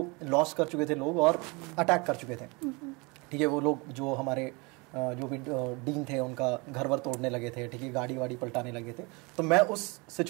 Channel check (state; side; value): quieter; left; 27.9 dB